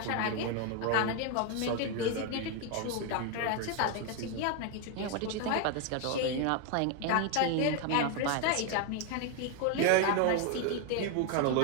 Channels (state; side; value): different; both; correlation 0.01